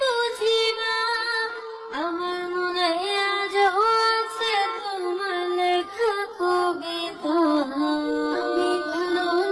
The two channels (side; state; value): both; identical; correlation 1.00